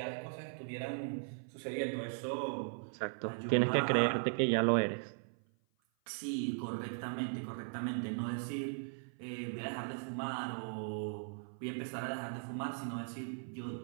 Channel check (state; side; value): silent; left; 52 dB below the other